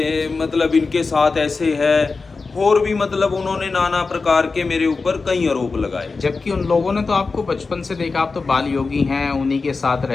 मतलब इनके साथ ऐसे है, और भी मतलब उन्होंने नाना प्रकार के मेरे ऊपर कई आरोप लगाए। जबकि उन लोगों ने तो आपको बचपन से देखा, आप तो बाल योगी हैं, उन्हीं के साथ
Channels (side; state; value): right; quieter; 4.2 dB